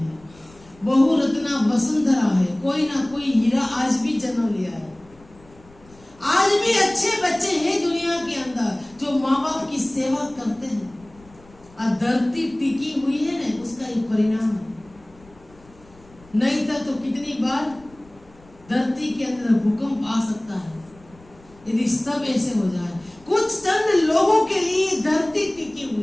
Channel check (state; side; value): noise; left; rumble, 26 dB below the sound